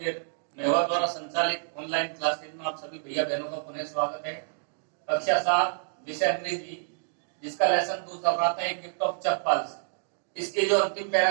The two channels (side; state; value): left; silent; digital silence